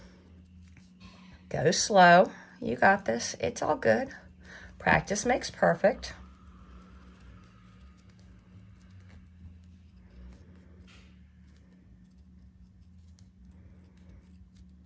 Go slow. You got this. It's all good. Practice makes perfect.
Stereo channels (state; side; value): identical; both; correlation 1.00